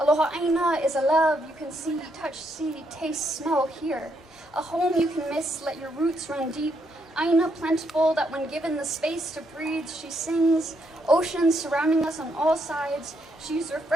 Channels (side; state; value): both; normal; correlation 0.76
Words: aina is a love you can see, touch, see, taste, smell, hear. A home you can miss, let your roots run deep. Aina plentiful that when given the space to breathe, she sings. Oceans surrounding us on all sides. She's